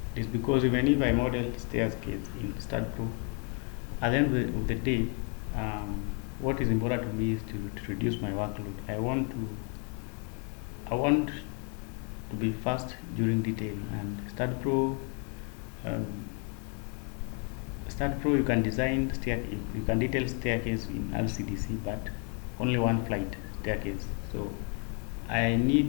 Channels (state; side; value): quieter; right; 38.6 dB